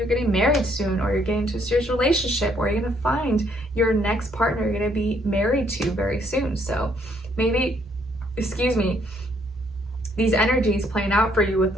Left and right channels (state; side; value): normal; both; correlation 0.69